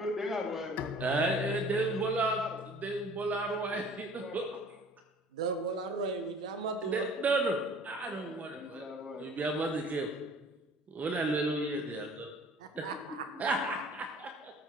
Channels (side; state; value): both; normal; correlation 0.49